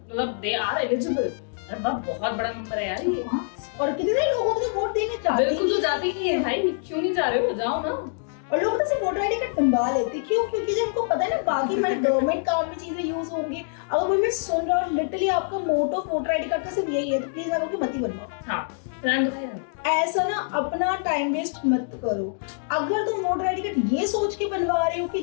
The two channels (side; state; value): right; silent; digital silence